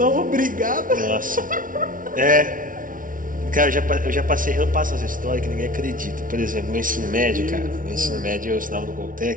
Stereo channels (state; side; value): late; left; 0.39 ms